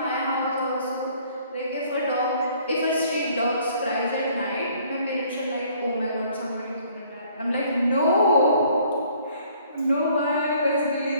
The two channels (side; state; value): both; inverted; correlation -0.59